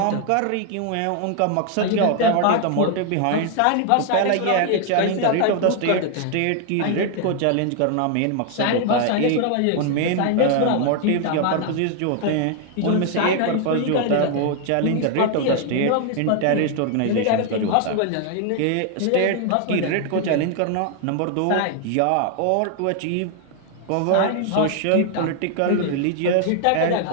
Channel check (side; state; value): both; different; correlation 0.00